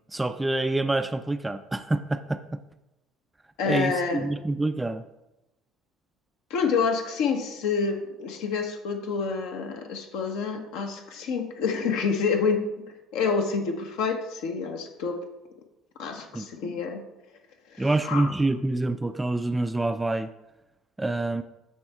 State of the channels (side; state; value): both; normal; correlation 0.55